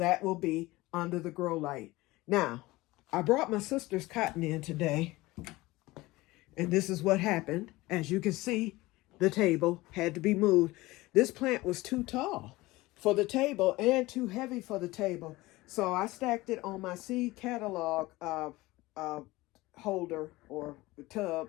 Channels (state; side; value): quieter; right; 19.9 dB